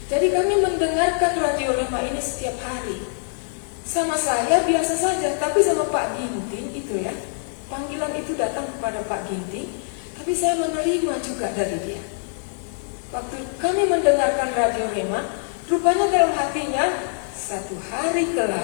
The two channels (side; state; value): right; silent; 61 dB below the other